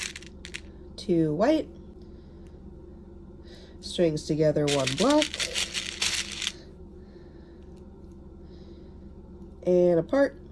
2 white, strings together, 1 black, and apart,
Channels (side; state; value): both; identical; correlation 1.00